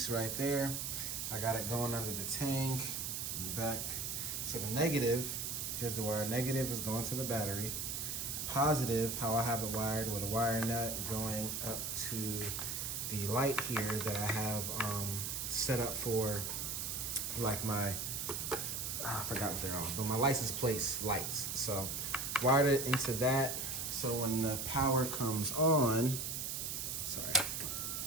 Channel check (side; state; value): right; noise; hiss, 3 dB below the sound